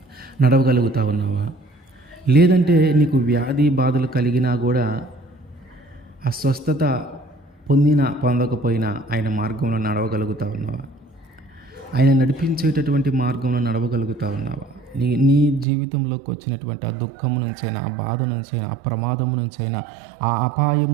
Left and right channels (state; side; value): drops out; left; at 15.7 s